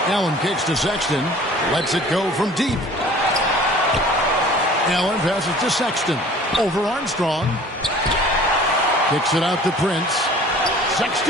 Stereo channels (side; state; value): both; normal; correlation 0.47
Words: Allen kicks to Sexton. Lets it go from deep. Allen passes to Sexton. Over Armstrong. Kicks it out to Prince.